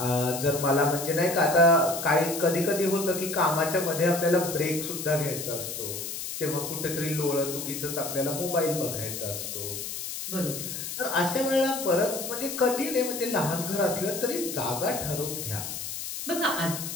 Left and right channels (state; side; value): noise; left; hiss, 6 dB below the sound